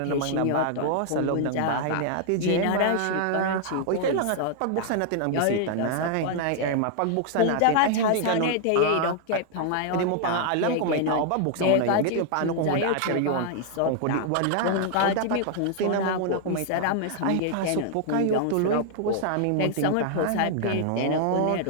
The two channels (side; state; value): both; different; correlation -0.01